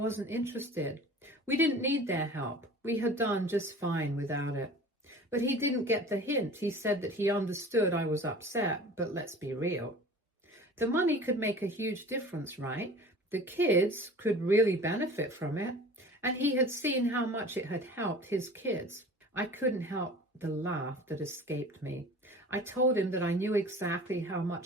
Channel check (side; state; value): both; normal; correlation 0.42